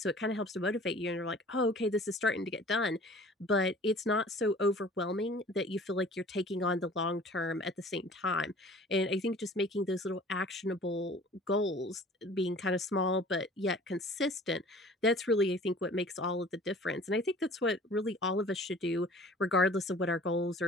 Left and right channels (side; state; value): both; normal; correlation 0.48